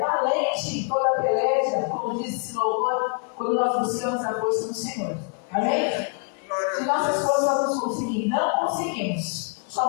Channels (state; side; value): quieter; right; 38.5 dB